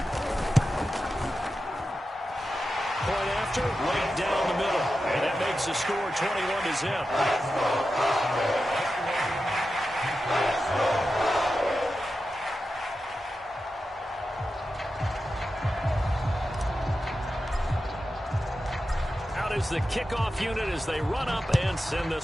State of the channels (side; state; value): both; normal; correlation 0.91